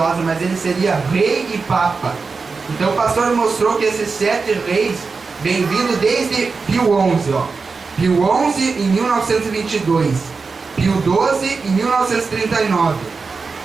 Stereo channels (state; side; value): quieter; left; 4.6 dB